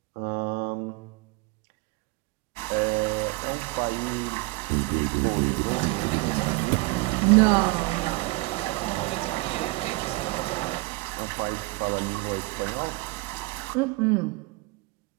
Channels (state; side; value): quieter; left; 23.9 dB